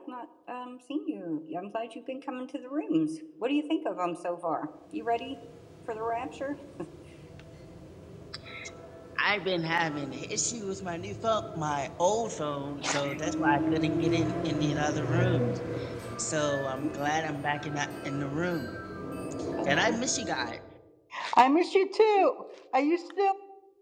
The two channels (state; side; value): identical; both; correlation 1.00